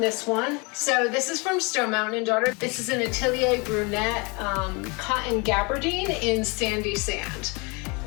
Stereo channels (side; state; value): right; quieter; 29.9 dB